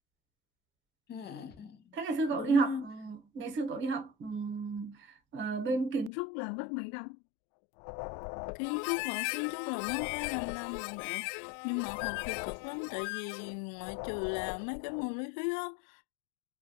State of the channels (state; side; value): drops out; right; at 6.1 s